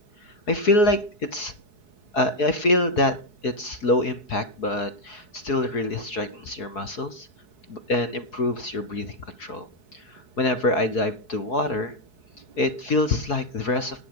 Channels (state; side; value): late; right; 4.7 ms